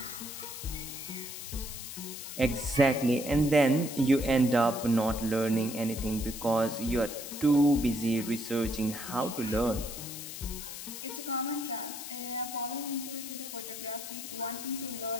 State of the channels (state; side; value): noise; left; hiss, 9 dB below the sound